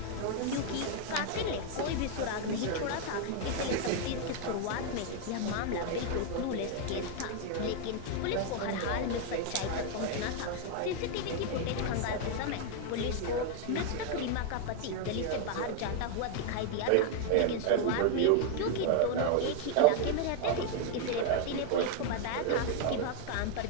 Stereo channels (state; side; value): different; both; correlation 0.00